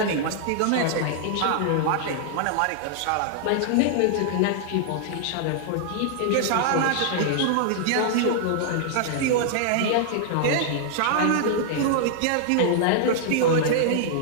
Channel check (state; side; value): different; both; correlation -0.01